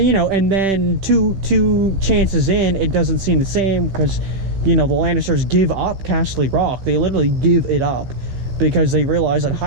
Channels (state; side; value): late; left; 15 ms